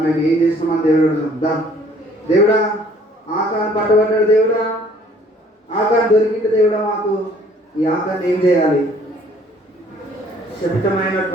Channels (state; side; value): normal; both; correlation 0.58